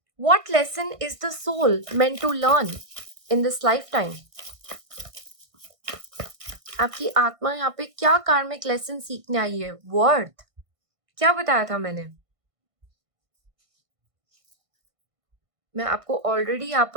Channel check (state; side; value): late; left; 1.6 ms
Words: What lesson is the soul meant to learn in this life time? आपकी आत्मा यहाँ पे क्या कार्मिक लेसन सीखने आई है? वर्थ क्या बताया था मैंने? मैं आपको ऑलरेडी यहाँ